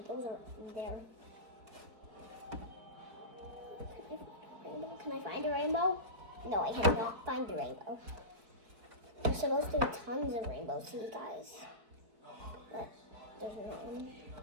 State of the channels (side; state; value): left; late; 4.7 ms